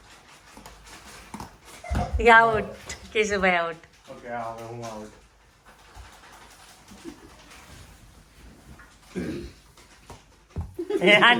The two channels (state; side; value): identical; both; correlation 1.00